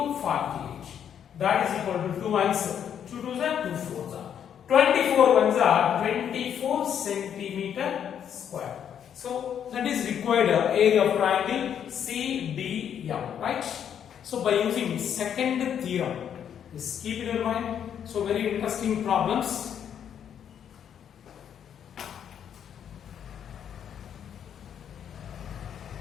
48. That is equal to 2 ones, 2 twos are 2 fours are 24 ones are 24 centimeter square. So that is required area of triangle CDM, right? So by using second theorem, just keep it in mind. So very interesting problems.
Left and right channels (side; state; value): right; quieter; 8.8 dB